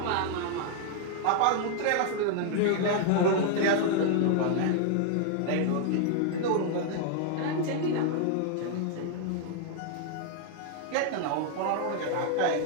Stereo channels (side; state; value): both; different; correlation 0.00